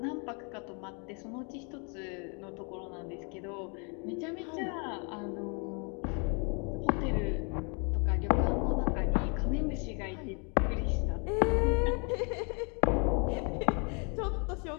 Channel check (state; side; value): quieter; right; 35.5 dB